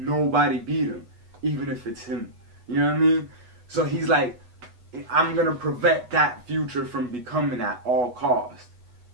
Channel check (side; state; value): left; late; 8.2 ms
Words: nobody beat him, even if it's him. You know what I mean? So he's like, I'm gonna prevent that future from becoming at all cost,